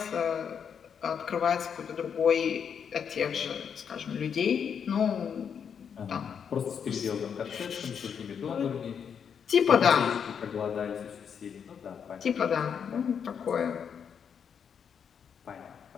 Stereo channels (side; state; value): right; quieter; 7.3 dB